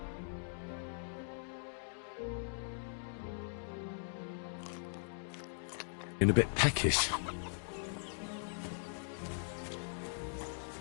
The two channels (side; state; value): right; silent; digital silence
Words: In a bit peckish.